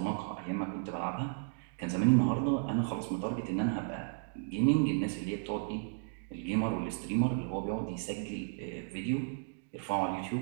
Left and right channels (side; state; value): left; silent; 55 dB below the other